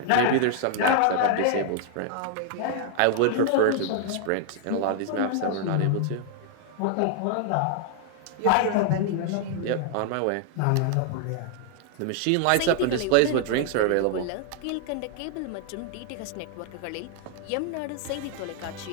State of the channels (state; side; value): different; both; correlation 0.00